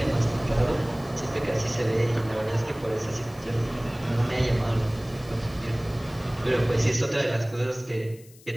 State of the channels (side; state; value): left; noise; hiss, 24 dB below the sound